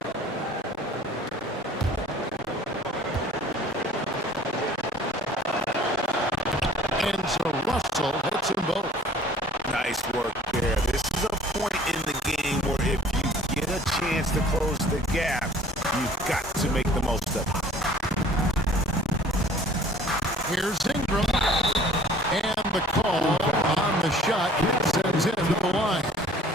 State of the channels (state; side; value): normal; both; correlation 0.52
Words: And so Russell hits them both. Nice work there. This is a point in the game where if you get a chance to close the gap, you've got to make the most of it. Here's Ingram. And the call on the shot sends him to the line.